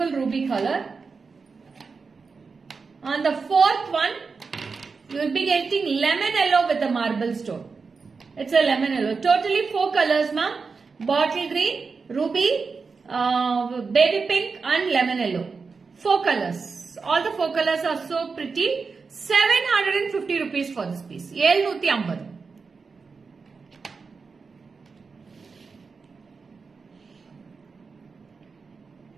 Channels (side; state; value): left; quieter; 4.8 dB